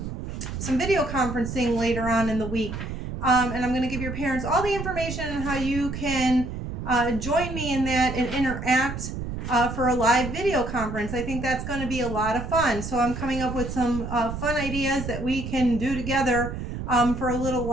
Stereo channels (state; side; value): noise; right; rumble, 6 dB below the sound